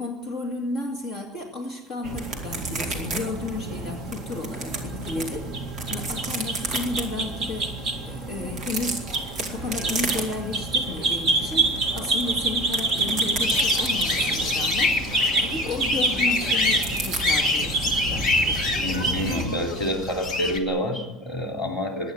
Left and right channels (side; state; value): both; normal; correlation 0.36